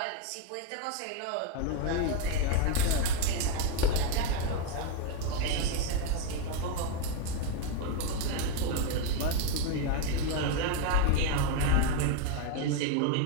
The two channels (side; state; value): both; different; correlation 0.02